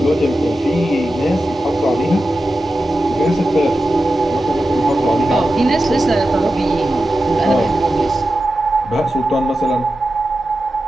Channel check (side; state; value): both; normal; correlation 0.92